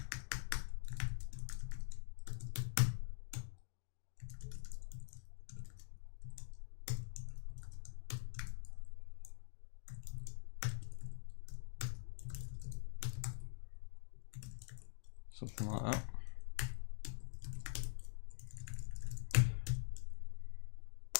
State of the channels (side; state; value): right; silent; digital silence